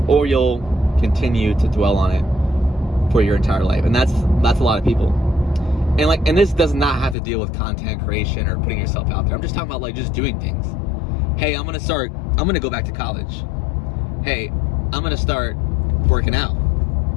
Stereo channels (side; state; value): right; drops out; at 7.2 s